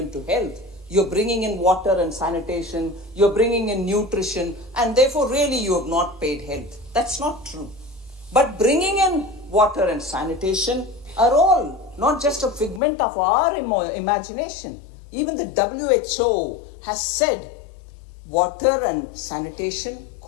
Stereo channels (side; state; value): right; drops out; at 12.8 s